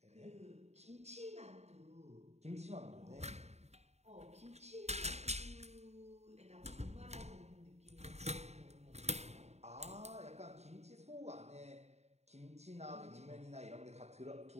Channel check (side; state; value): left; late; 0.32 ms